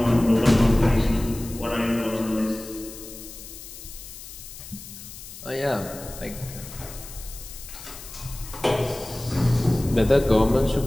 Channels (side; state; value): left; noise; hiss, 14 dB below the sound